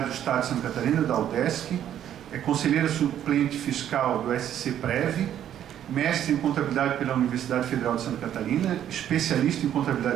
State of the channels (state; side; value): quieter; left; 10.5 dB